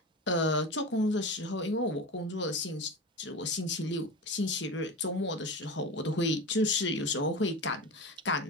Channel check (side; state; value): both; normal; correlation 0.27